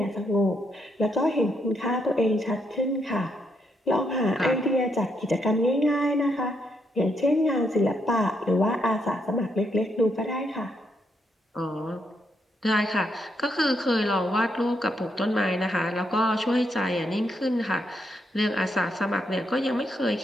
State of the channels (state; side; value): normal; both; correlation 0.78